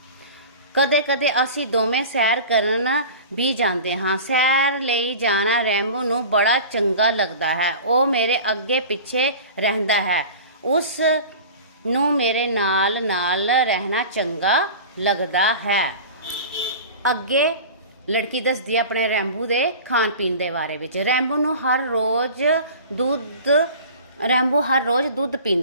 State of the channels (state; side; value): inverted; both; correlation -0.37